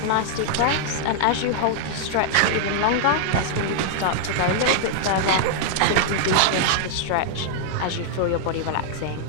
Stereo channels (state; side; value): different; both; correlation -0.01